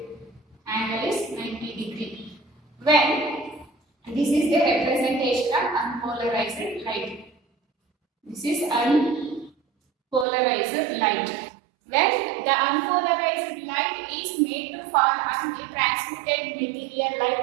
Angle is 90 degree. When this is the representation of unpolarized light. This is unpolarized light. When the unpolarized light is made to fall on the transmitted material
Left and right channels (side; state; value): left; drops out; at 10.2 s